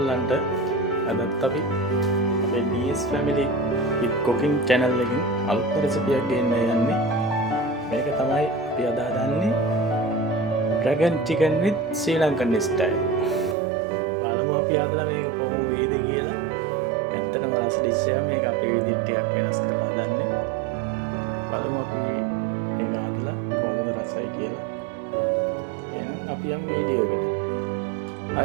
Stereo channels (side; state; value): left; drops out; at 13.6 s